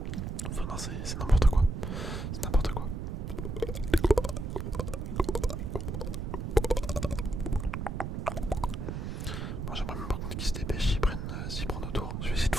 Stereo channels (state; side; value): noise; right; rumble, 4 dB below the sound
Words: Enfin, non, c'est n'importe quoi. C'est n'importe quoi. Bon, j'aimerais même par contre qu'ils se dépêchent s'ils prennent nos tours. Je vais essayer de